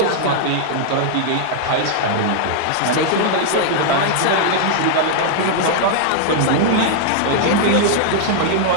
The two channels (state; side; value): different; both; correlation -0.01